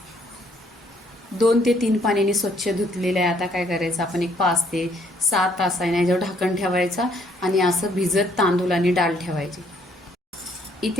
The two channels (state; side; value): normal; both; correlation 0.66